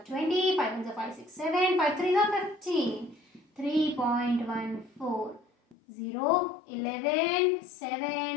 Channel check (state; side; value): drops out; right; at 5.8 s